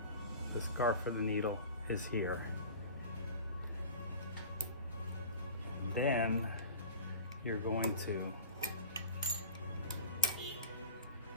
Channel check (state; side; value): inverted; both; correlation -0.37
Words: the scarf of the needle is here. Then you're going to